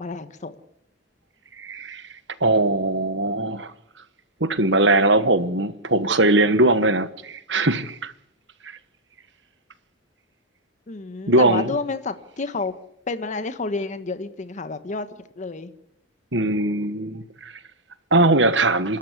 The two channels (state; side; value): normal; both; correlation -0.09